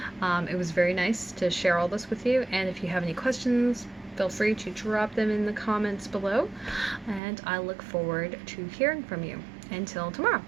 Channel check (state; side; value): drops out; left; at 7.2 s